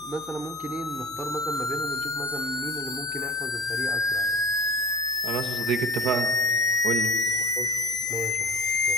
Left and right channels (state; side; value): noise; left; hum, 26 dB below the sound